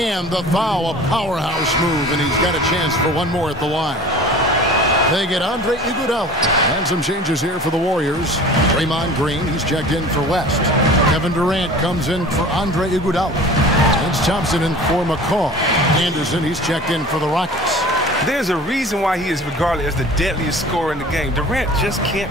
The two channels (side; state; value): both; normal; correlation 0.41